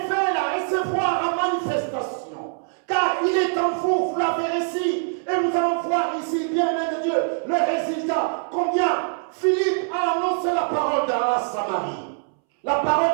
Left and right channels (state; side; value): silent; left; 63 dB below the other